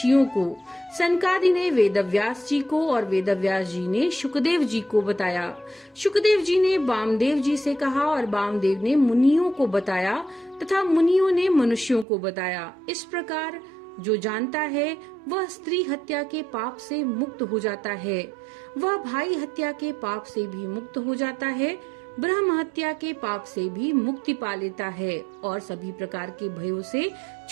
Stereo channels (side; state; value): left; drops out; at 12.1 s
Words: को, सनकादि ने वेदव्यास जी को और वेदव्यास जी ने शुकदेव जी को बताया। शुकदेव जी ने वामदेव जी से कहा और वामदेव ने मुनियों को बताया तथा मुनियों ने मनुष्यों को बताया। इस प्रकार जो जानता है वह स्त्री हत्या के पाप से मुक्त हो जाता है, वह भाई हत्या के पाप से भी मुक्त हो जाता है, ब्रह्म हत्या के पाप से भी मुक्ति पा लेता है और सभी प्रकार के भयों से